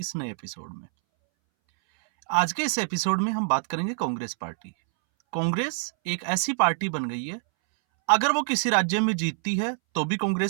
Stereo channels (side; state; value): left; silent; 61 dB below the other